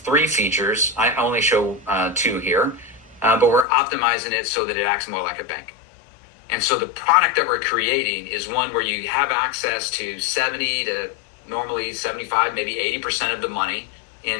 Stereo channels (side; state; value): right; drops out; at 3.7 s